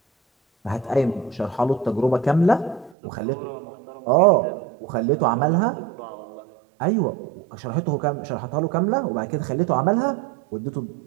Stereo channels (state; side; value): drops out; left; at 3.0 s